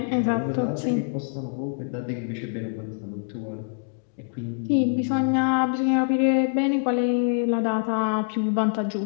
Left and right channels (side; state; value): right; silent; digital silence